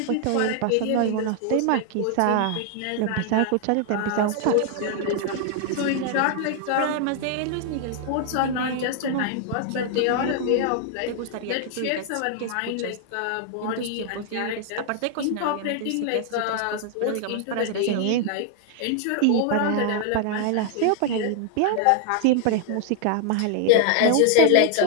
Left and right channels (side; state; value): both; different; correlation 0.00